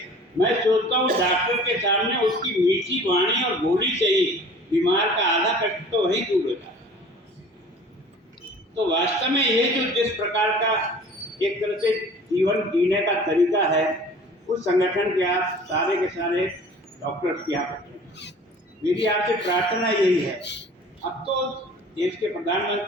मैं सोचता हूँ डॉक्टर के सामने उसकी मीठी वाणी और बोली से ही बीमार का आधा कष्ट तो वही दूर होता है। तो वास्तव में ये जो जिस प्रकार का एक तरह से जीवन जीने का तरीका है, उस संगठन के आप सारे के सारे डॉक्टर्स की आप मेरी आपसे प्रार्थना यही है। अब तो देश के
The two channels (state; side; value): normal; both; correlation 0.46